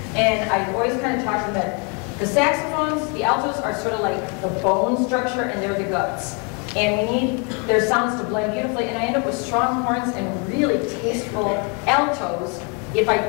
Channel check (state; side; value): quieter; right; 34.9 dB